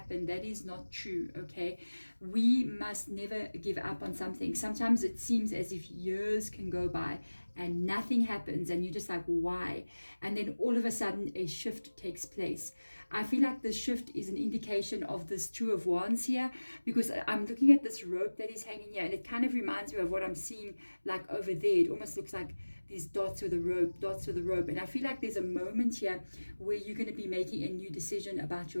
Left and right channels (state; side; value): inverted; both; correlation -1.00